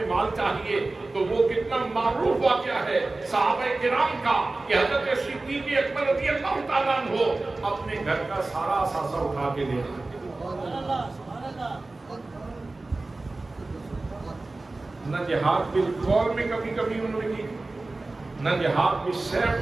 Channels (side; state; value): left; quieter; 3.2 dB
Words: مال چاہیے، تو وہ کتنا معروف واقعہ ہے صحابہ کرام کا کہ حضرت صدیق اکبر رضی اللہ تعالیٰ عنہ اپنے گھر کا سارا اثاثہ اٹھا کے لے آئے۔ نہ جہاد بالقول میں کبھی کبھی انہوں نے کی، نہ جہاد بالسیف